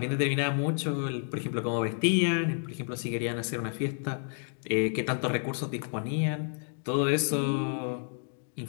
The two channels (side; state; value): right; silent; 58 dB below the other